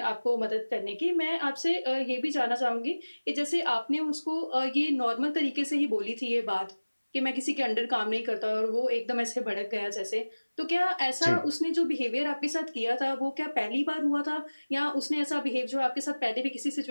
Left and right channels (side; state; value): both; inverted; correlation -1.00